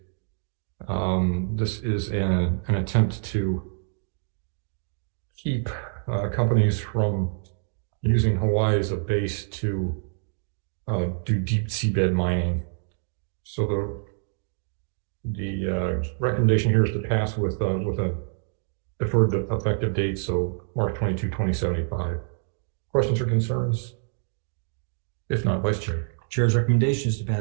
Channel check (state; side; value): silent; left; digital silence